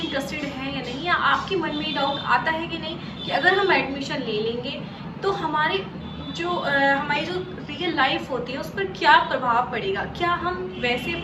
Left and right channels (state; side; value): identical; both; correlation 1.00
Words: इंटरेस्टेड हैं या नहीं, या आपके मन में डाउट आता है कि नहीं कि अगर हम एडमिशन ले लेंगे तो हमारी जो रियल लाइफ होती है उस पर क्या प्रभाव पड़ेगा, क्या हम वैसे